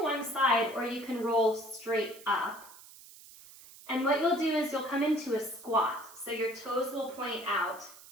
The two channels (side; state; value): right; noise; hiss, 19 dB below the sound